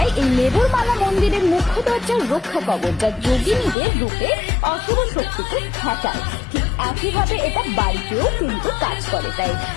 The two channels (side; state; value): right; drops out; at 3.8 s